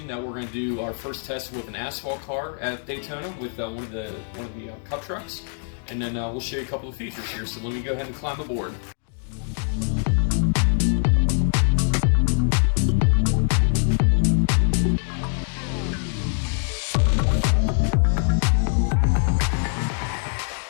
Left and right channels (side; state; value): right; silent; digital silence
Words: that we're going to do our first test with an asphalt car at Daytona with one of the Cup trucks, and then we'll show you a couple of features here. So let me go ahead and climb aboard.